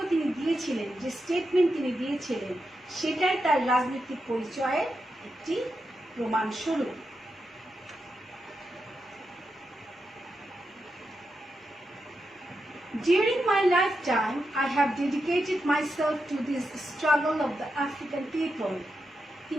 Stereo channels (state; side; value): normal; both; correlation 0.87